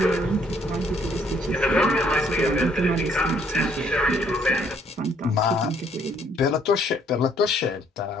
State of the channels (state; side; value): normal; both; correlation 0.65